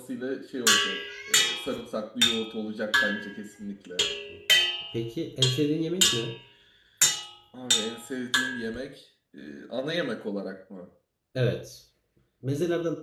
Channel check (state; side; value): identical; both; correlation 1.00